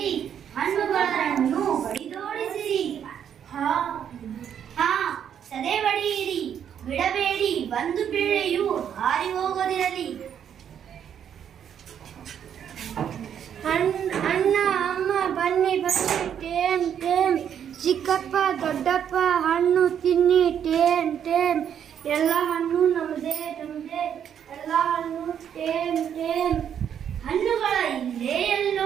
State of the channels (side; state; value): left; quieter; 8.9 dB